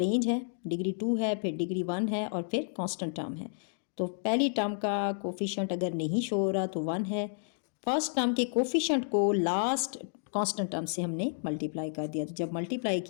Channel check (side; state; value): right; silent; digital silence